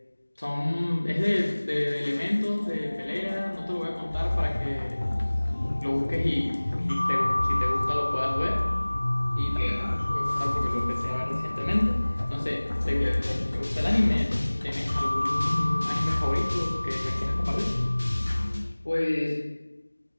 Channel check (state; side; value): inverted; both; correlation -1.00